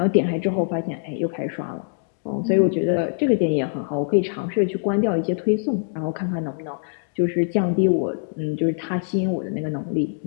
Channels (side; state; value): right; silent; digital silence